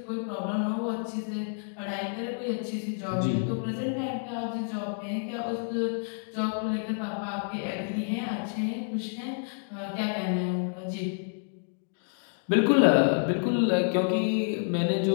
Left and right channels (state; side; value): silent; right; digital silence